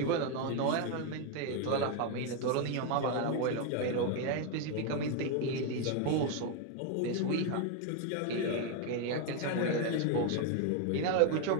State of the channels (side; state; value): both; different; correlation 0.01